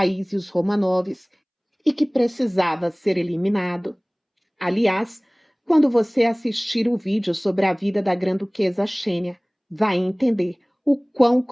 e os Romanovs e que precisava ser eliminado. Aliás, quando você assistir o vídeo sobre a vida da grã-duquesa Xênia, vai entender o quão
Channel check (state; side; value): identical; both; correlation 1.00